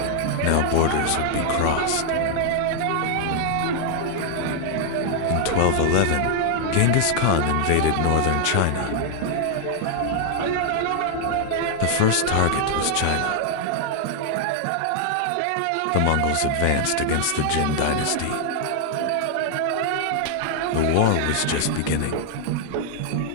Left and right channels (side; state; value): both; different; correlation 0.00